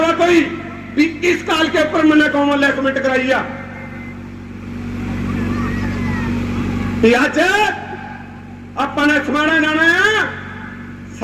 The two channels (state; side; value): identical; both; correlation 1.00